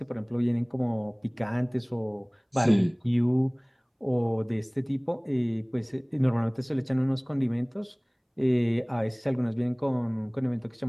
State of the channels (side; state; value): both; identical; correlation 1.00